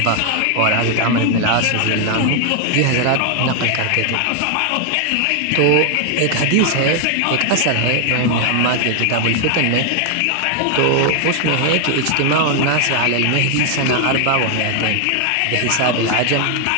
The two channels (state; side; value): different; both; correlation 0.00